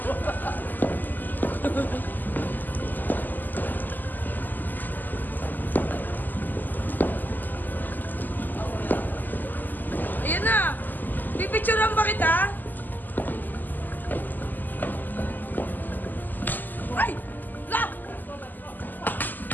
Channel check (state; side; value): late; right; 0.087 ms